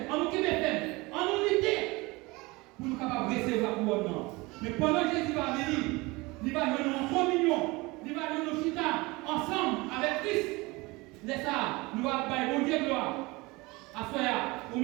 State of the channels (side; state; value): left; quieter; 23.5 dB